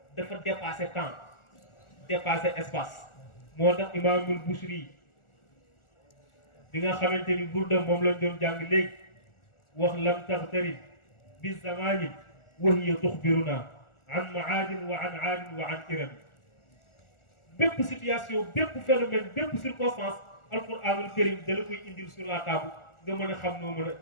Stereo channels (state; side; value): late; right; 1.4 ms